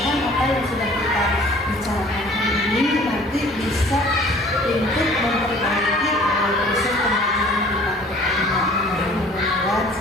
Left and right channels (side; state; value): both; normal; correlation 0.51